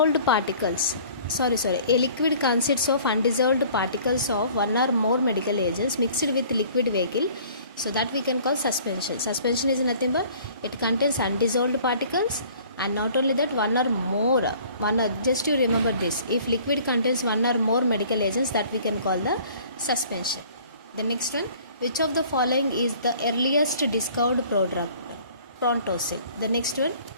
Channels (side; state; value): both; inverted; correlation -0.52